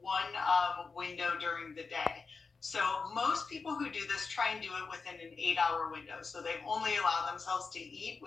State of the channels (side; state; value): right; quieter; 4.7 dB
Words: one window during the day. So most people who do this try and do it within an 8-hour window. So they only allow themselves to eat